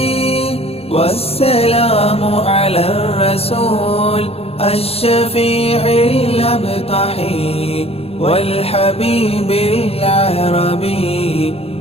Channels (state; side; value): late; right; 0.29 ms